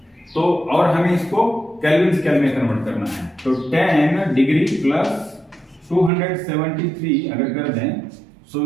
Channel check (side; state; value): left; drops out; at 6.1 s